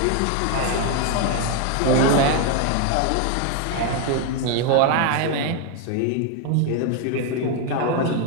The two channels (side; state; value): both; different; correlation 0.01